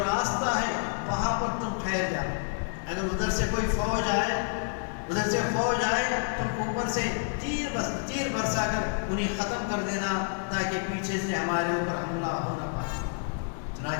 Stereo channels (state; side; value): silent; right; digital silence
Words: ہے وہاں پر تم ٹھہر جاؤ۔ اگر ادھر سے کوئی فوج آئے تم اوپر سے تیر برسا کر انہیں ختم کر دینا تاکہ پیچھے سے ہمارے اوپر حملہ ہو نہ پائے۔